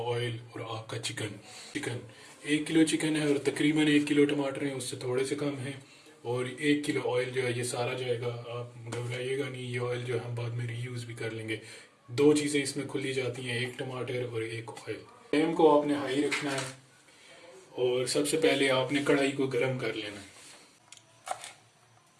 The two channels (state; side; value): identical; both; correlation 1.00